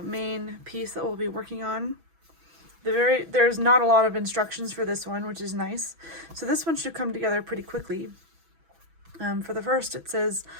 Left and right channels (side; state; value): left; late; 6.1 ms